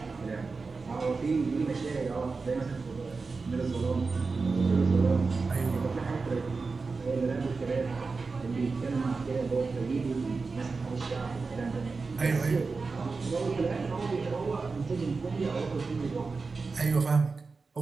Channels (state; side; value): quieter; left; 4.3 dB